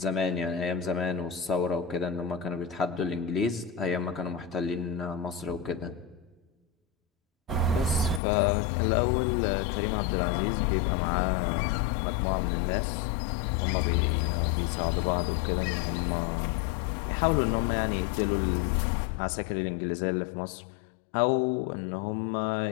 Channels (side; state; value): right; drops out; at 8.2 s